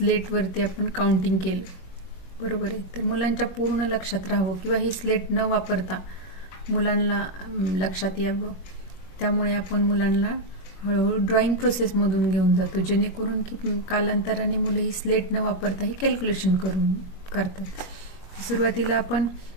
आपण काउंटिंग केलं, बरोबर आहे. तर मुलांच्या पूर्ण लक्षात राहावं किंवा ही स्लेट न वापरता मुलांना लक्षात यावं, त्यामुळे आपण मुलांना हळूहळू ड्रॉइंग प्रोसेसमधून घेऊन जातो, जेणेकरून की कालांतराने मुले ही स्लेट न वापरता ही कॅल्क्युलेशन करतात. सुरुवातीला आपण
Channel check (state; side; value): late; right; 21 ms